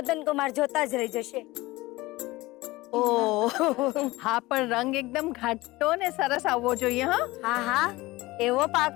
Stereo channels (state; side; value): quieter; right; 20.0 dB